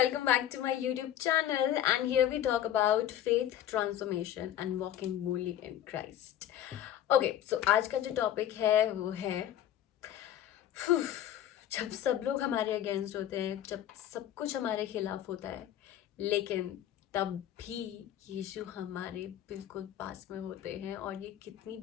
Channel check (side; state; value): right; quieter; 11.3 dB